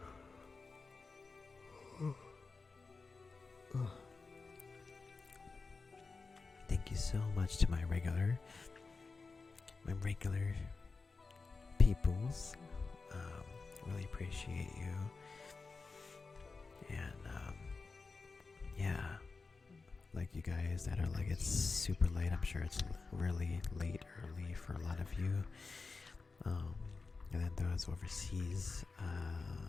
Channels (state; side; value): quieter; right; 4.2 dB